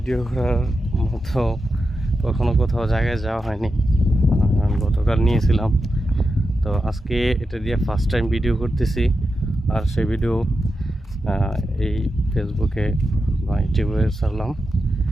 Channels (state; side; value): normal; both; correlation 0.89